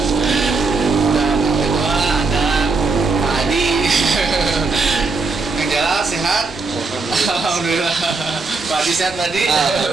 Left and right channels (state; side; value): quieter; left; 4.0 dB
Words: Dan yang kedua ada Pak Adi. Kang Jalal sehat? Alhamdulillah. Pak Adi sehat tadi?